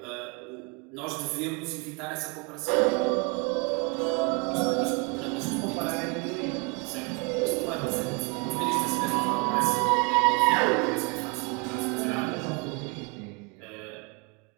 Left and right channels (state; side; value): quieter; left; 30.7 dB